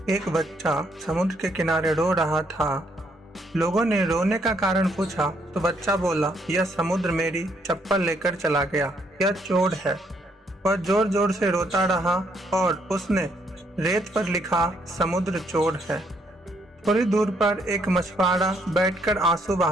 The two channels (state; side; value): normal; both; correlation 0.71